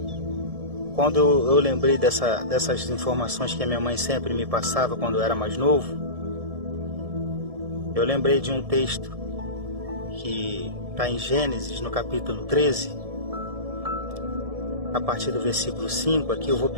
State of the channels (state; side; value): late; left; 1.7 ms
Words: quando eu lembrei dessas informações que a minha mãe sempre me passava quando eu era mais novo, eu lembrei de um texto que está em Gênesis, no capítulo 13, a partir do versículo 5. Aqui eu vou